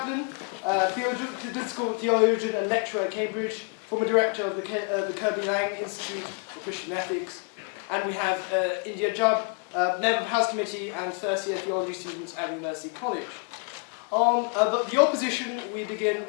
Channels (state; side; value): quieter; right; 38.4 dB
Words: political theologian and lecturer at Cambridge, former director of the Kirby Lang Institute for Christian Ethics. And we have Jubb, member of the House Committee and first-year theology students at University College. On the opposition, we begin